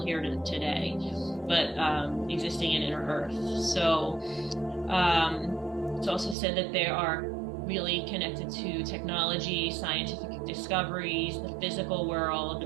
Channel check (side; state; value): left; drops out; at 6.4 s